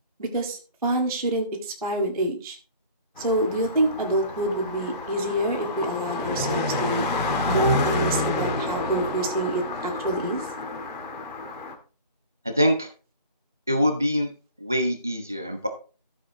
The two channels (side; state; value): both; inverted; correlation -0.44